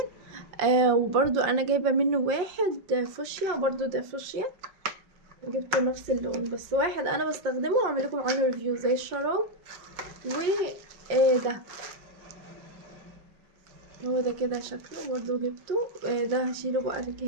وبرضو انا جايبة منه واحد فوشيا، برضو ده فوشيا. جبته نفس اللون، بس واحد انا بستخدمه واعمل لكم عنه ريفيو زي الشراب. ده هو ده كده شكله، برضو جبته. ده هشيله بقى في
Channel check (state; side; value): late; left; 5.2 ms